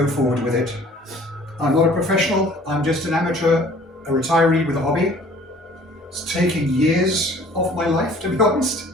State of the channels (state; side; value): normal; both; correlation 0.52